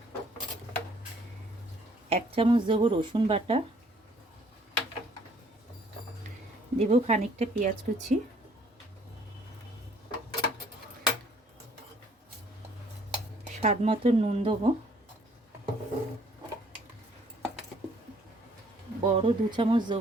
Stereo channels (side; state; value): both; normal; correlation 0.61